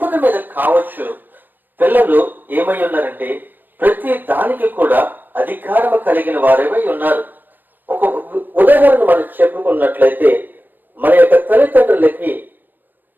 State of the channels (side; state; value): left; late; 0.091 ms